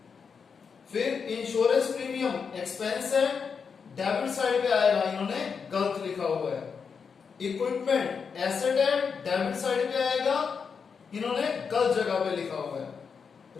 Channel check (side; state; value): right; quieter; 6.0 dB